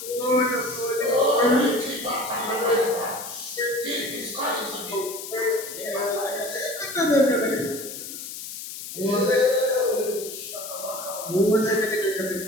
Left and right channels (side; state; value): left; noise; hiss, 9 dB below the sound